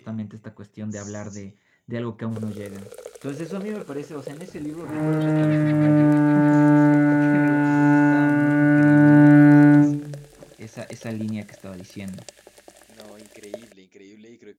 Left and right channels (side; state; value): both; identical; correlation 1.00